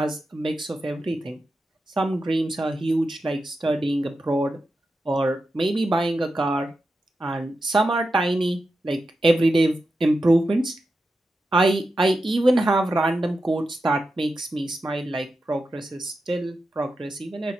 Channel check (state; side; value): normal; both; correlation 0.89